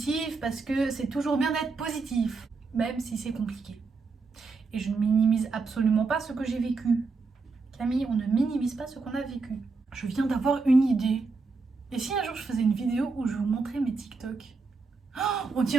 parce que c'est toujours bien d'être positif, même si c'est compliqué. Et je ne minimise absolument pas ce que j'ai vécu. Camille, on ne minimise pas ce qu'on a vécu. Je viens d'avoir une idée. Et si un jour je faisais une vidéo où je vous montrais mes TikTok? On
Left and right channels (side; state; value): left; quieter; 4.2 dB